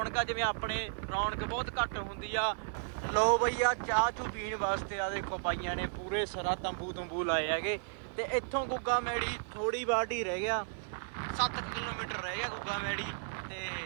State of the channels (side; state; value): left; silent; 55 dB below the other